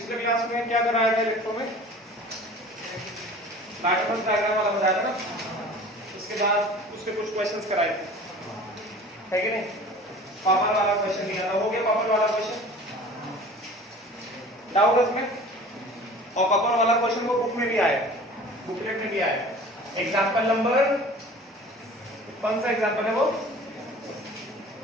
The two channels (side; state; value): both; normal; correlation 0.43